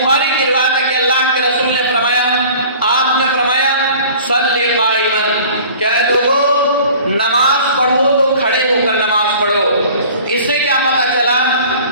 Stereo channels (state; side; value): inverted; both; correlation -0.46